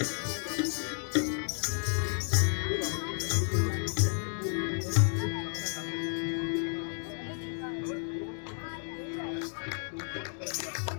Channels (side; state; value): right; silent; 55 dB below the other